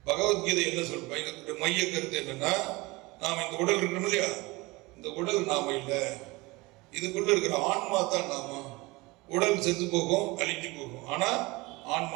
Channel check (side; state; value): left; quieter; 22.7 dB